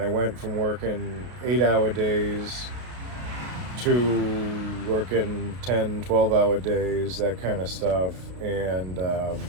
went from working 8-hour days to working 10, 12-hour days, that kind of stuff, and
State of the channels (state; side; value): late; left; 33 ms